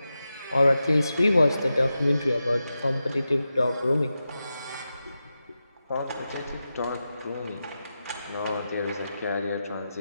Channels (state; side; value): inverted; both; correlation -0.91